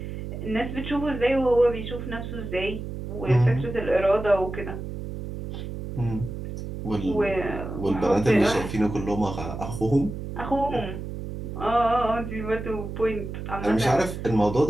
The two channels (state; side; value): noise; right; hum, 7 dB below the sound